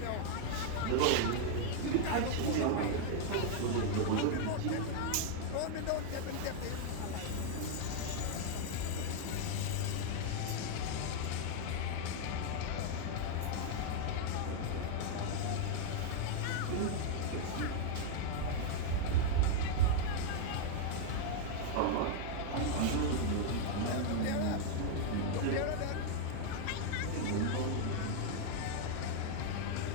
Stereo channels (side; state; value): both; different; correlation 0.00